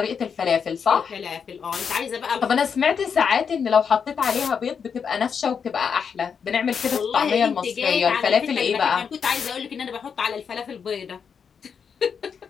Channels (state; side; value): quieter; right; 6.6 dB